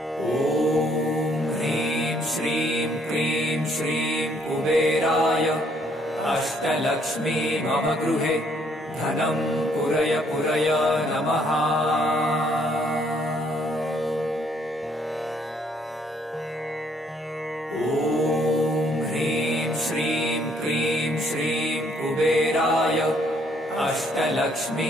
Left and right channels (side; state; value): both; normal; correlation 0.67